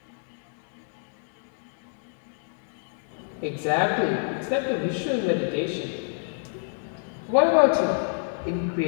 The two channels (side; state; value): right; silent; digital silence